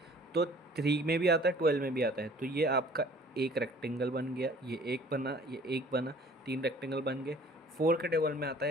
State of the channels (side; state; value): both; normal; correlation 0.51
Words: तो 3 में भी आता है 12 में भी आता है, तो ये आपका एक रेक्टेंगल बन गया, ये एक बना, ये एक बना, 3 रेक्टेंगल बन गए। 4 के टेबल में आता